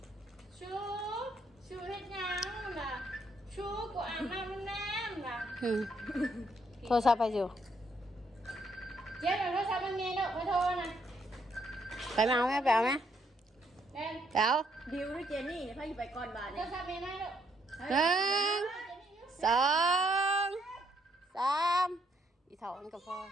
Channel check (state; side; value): normal; both; correlation 0.72